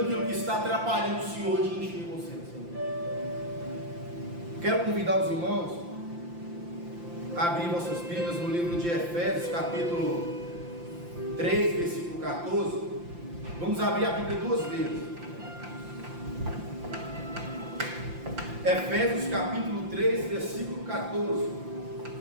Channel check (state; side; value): late; left; 5.8 ms